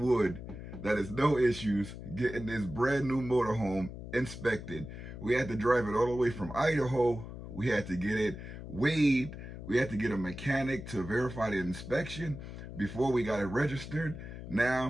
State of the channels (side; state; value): left; noise; hum, 10 dB below the sound